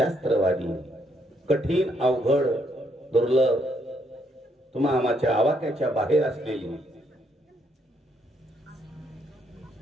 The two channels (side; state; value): both; normal; correlation 0.73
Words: कठीण अवघड दुर्लभ तुम्हा आमाच्या आवाक्याच्या बाहेर असलेली